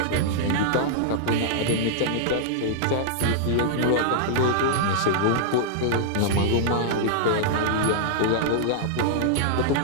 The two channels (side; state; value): both; different; correlation -0.02